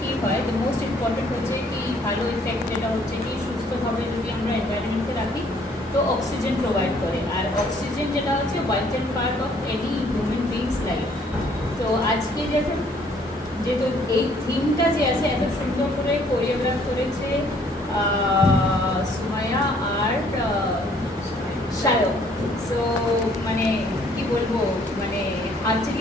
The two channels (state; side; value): normal; both; correlation 0.62